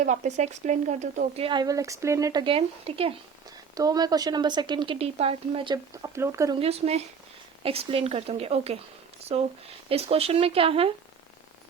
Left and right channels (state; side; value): quieter; left; 6.2 dB